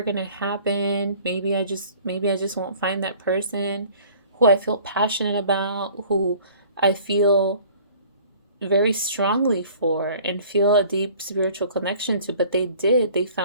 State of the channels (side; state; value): both; inverted; correlation -0.50